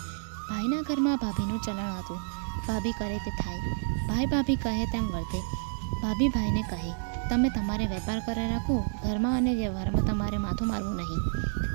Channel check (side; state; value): left; silent; digital silence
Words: ભાઈના ઘરમાં ભાભીનું ચલણ હતું. ભાભી કરે તે થાય, ભાઈ ભાભી કહે તેમ વર્તે. ભાભી ભાઈને કહે, તમે તમારે વેપાર કરે રાખો, ઘરમાં અને વ્યવહારમાં તમારે માથું મારવું નહીં,